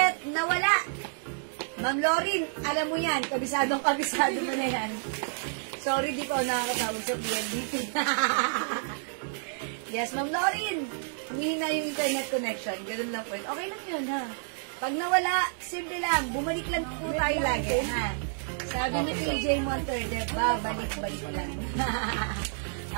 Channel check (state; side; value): silent; left; digital silence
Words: nawala? Ma'am Lauren, alam mo yan, kabisado mo na yan. Sorry, di ko nakakatawag sa PNDT. Yes, Ma'am Lauren. Humihina yung internet connection. Ganun lang po. Okay lang yun, ha? Pag nawala, simple lang. Bumalik lang po tayo lagi, ha? Sabi ni PJ Monterde, balik-balik lang.